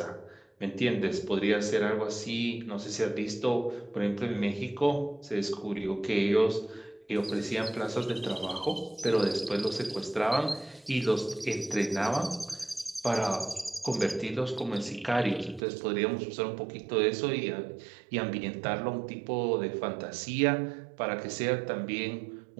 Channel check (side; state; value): left; drops out; at 15.6 s